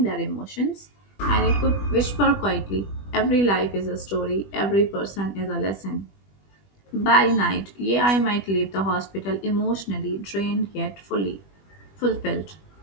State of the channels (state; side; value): late; right; 20 ms